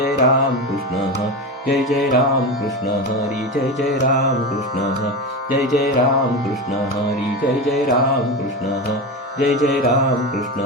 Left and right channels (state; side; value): normal; both; correlation 0.21